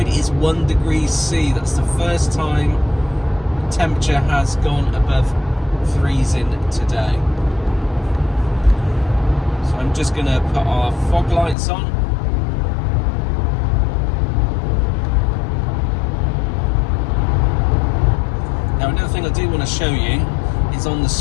is 1 degree C. That's the first time temperature has gone above freezing today. So I'm just going to put our fog lights on. Now another thing I do want to show you is on the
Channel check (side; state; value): right; drops out; at 11.6 s